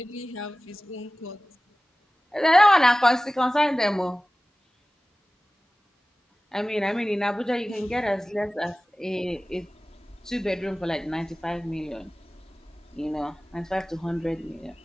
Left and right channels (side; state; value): both; normal; correlation 0.97